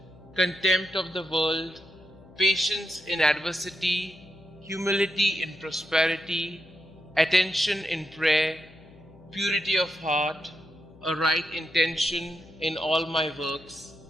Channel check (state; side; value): noise; left; hum, 23 dB below the sound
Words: contempt of the world, patience in adversity, humility in prosperity, attention in prayer, purity of heart, a right intention in all my works,